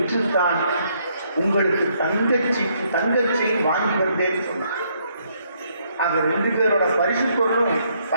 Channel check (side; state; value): both; inverted; correlation -0.71